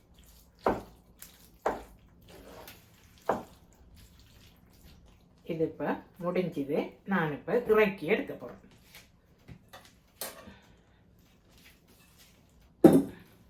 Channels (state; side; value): identical; both; correlation 1.00